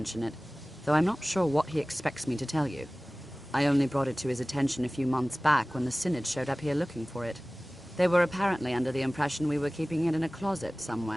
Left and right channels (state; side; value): normal; both; correlation 0.98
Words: it, though I'm not sure what he expects me to tell you. I only brought it to his attention a few months back when the Synod showed up here looking for it. They were apparently under the impression we were keeping it in a closet